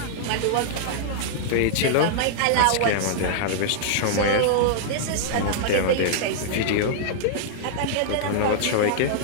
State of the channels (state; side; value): different; both; correlation -0.01